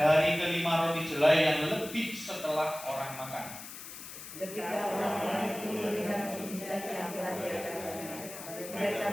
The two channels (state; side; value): noise; left; hiss, 12 dB below the sound